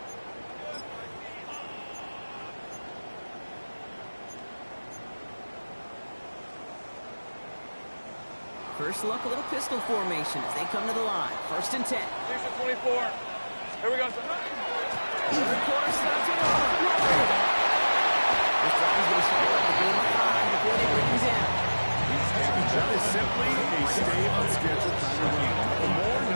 First look, a little pistol formation as they come to the line. First and 10. Here's your 24. Here we go. Third quarter starts with a run. This drive's going to start up the game of 5 before they bring him down. That is simply a stay on schedule kind of run. Nothing more,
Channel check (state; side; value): inverted; both; correlation -1.00